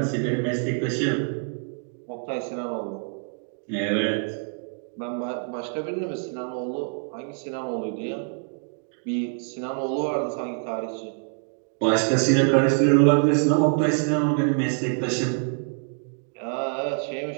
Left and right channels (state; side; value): silent; left; 57 dB below the other